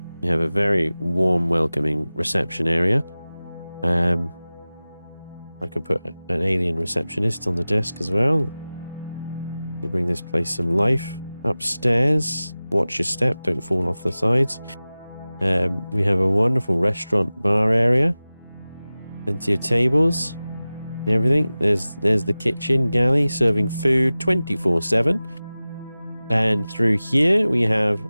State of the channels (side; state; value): both; inverted; correlation -0.97